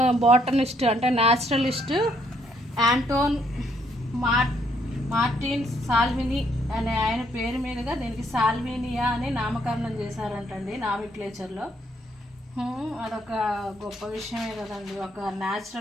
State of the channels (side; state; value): both; normal; correlation 0.71